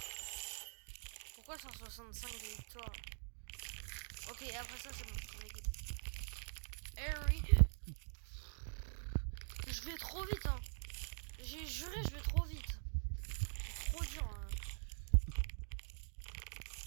Pourquoi 165 de victoire? Ok, après ça c'est bon, on est good. Harry. Je vais trop vite hein. J'ai juré je vais trop vite. C'est trop dur hein.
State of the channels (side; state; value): left; silent; digital silence